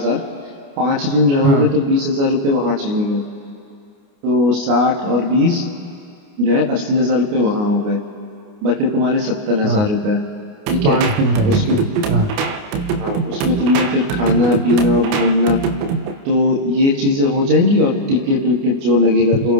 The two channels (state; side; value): late; left; 29 ms